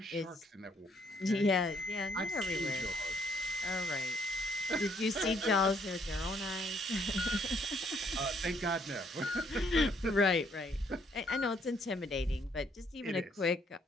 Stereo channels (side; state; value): both; normal; correlation 0.67